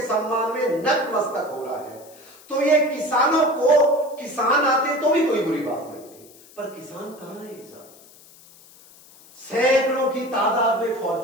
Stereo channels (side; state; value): left; noise; hiss, 24 dB below the sound